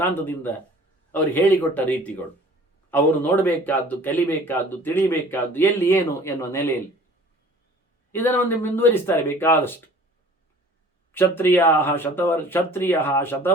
ಅವರು ಹೇಳಿಕೊಟ್ಟ ರೀತಿಗಳು. ಅವರು ನೋಡಬೇಕಾದ್ದು, ಕಲಿಬೇಕಾದ್ದು, ತಿಳಿಬೇಕಾದ್ದು ಎಲ್ಲಿ ಏನು ಎನ್ನುವ ನೆಲೆಯಲ್ಲಿ ಇದನ್ನು ಒಂದು ಮುಂದುವರಿಸ್ತಾರೆ ಬೇಕಾದಷ್ಟು. ಕ್ಷತ್ರಿಯ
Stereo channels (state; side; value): normal; both; correlation 0.49